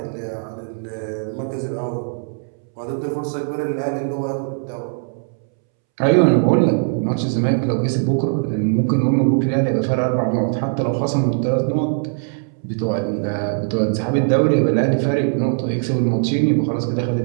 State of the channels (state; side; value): silent; left; 66 dB below the other